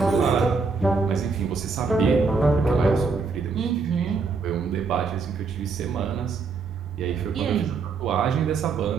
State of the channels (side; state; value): left; quieter; 4.7 dB